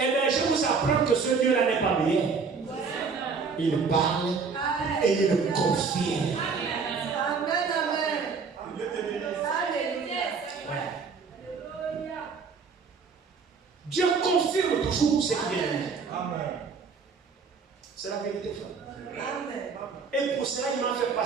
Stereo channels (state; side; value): quieter; left; 5.2 dB